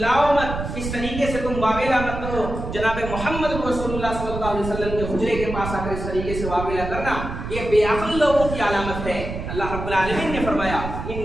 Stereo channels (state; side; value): noise; right; rumble, 6 dB below the sound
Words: مت، اس طریقے سے تم واویلا مت کرو۔ جناب محمد رسول اللہ صلی اللہ علیہ وسلم کے حجرے کے پاس آ کر اس طریقے سے واویلا کرنا یہ بے عقل لوگوں کی علامت ہے۔ اللہ رب العالمین نے فرمایا